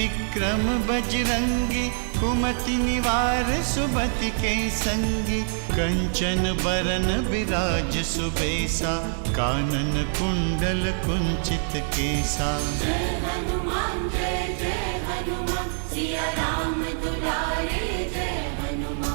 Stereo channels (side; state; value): left; silent; 62 dB below the other